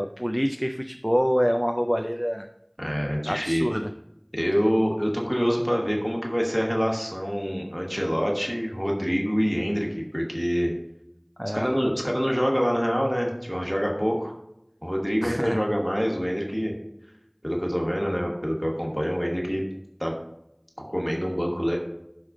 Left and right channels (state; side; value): identical; both; correlation 1.00